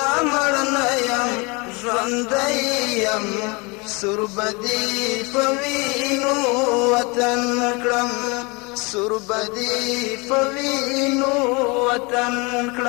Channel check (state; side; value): quieter; right; 28.2 dB